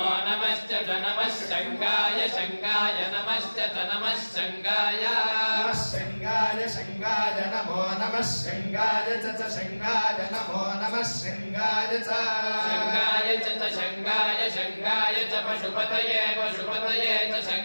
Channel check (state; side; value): inverted; both; correlation -1.00